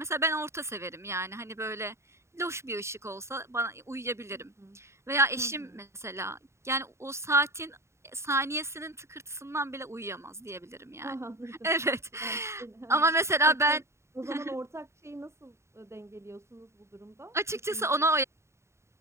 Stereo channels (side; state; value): left; late; 0.13 ms